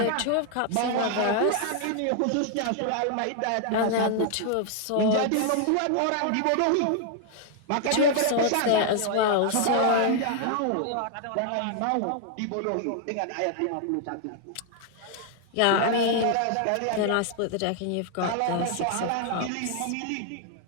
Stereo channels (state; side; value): different; both; correlation 0.00